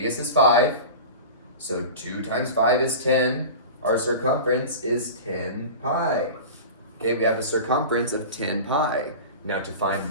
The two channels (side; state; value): both; inverted; correlation -0.32